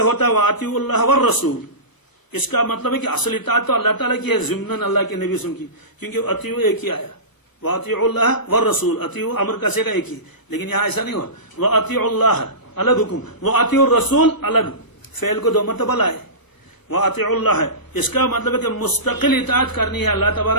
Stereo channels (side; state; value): right; late; 1.0 ms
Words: ہے وَأَطِيعُوا اللَّهَ وَالرَّسُولَ، اس کا مطلب ہے کہ اصل اطاعت تو اللہ تعالیٰ کی ہے ضمناً اللہ کے نبی صلی اللہ علیہ وسلم کی، کیونکہ اطیعوا ایک ہی آیا، وَأَطِيعُوا اللَّهَ وَالرَّسُولَ، اطیعوا امر کا سیگا ایک ہی، لیکن یہاں ایسا نہیں ہوا، وَأَطِيعُوا اللَّهَ الگ حکم، وَأَطِيعُوا الرَّسُولَ الگ، فعل کو 2 مرتبہ لائے، وَأَطِيعُوا اللَّهَ، اس کا مطلب ہے کہ مستقل اطاعت کرنی ہے اللہ